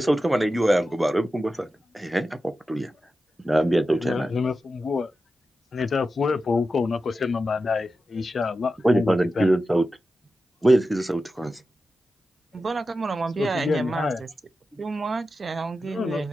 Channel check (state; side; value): normal; both; correlation 0.92